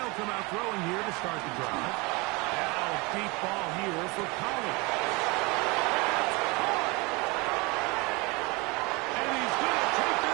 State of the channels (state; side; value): quieter; left; 26.4 dB